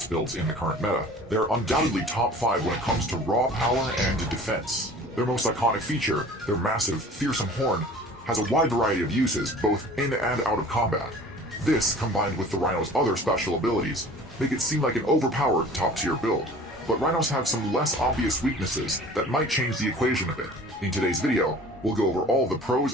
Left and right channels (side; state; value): both; normal; correlation 0.45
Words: builds in the current meta, they're undoubtedly top 5 when it comes to raw power and defense. Their most iconic feature, their massive, fearsome horn, has a wide variety of uses both in and out of combat. This, combined with the Rhino's other special abilities, make it seem like an overpowered top-tier build. But Rhinos have some less obvious weaknesses that might change the equation a bit. In today's video, we'll go over all the